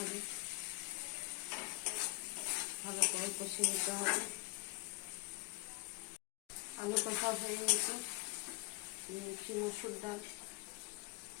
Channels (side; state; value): right; quieter; 26.0 dB